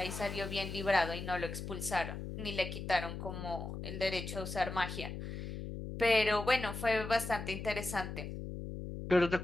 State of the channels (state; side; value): noise; left; hum, 7 dB below the sound